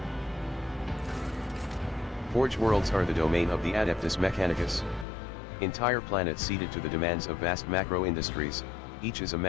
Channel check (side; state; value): right; drops out; at 5.1 s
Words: Forge worlds are the domain of the Adeptus Mechanicus. Entire planets ceded to the demands of vast macro-industries, each is a